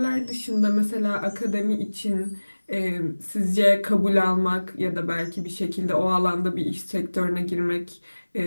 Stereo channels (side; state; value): both; inverted; correlation -1.00